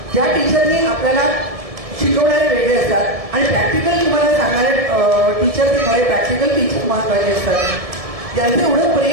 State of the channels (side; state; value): left; late; 1.7 ms